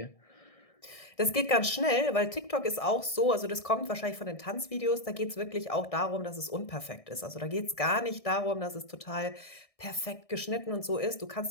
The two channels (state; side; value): late; right; 1.6 ms